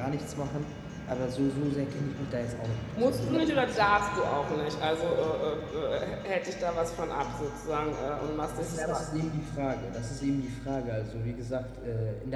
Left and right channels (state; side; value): identical; both; correlation 1.00